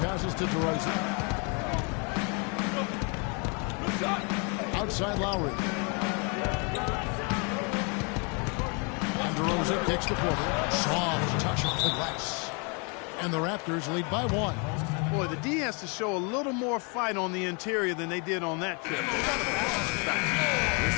passes to DeRozan. Outside Lowry. And DeRozan kicks to Porter. Soft touch off the glass. And the Raptors lead by 1. Boy, the D has to show a little more fight on the interior than they did on that trip.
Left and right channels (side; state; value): right; quieter; 34.7 dB